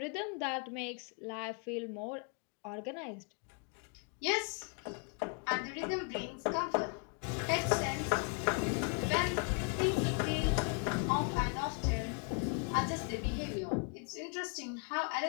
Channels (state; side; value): quieter; right; 38.0 dB